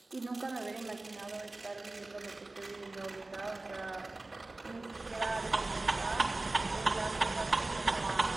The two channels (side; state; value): left; quieter; 3.0 dB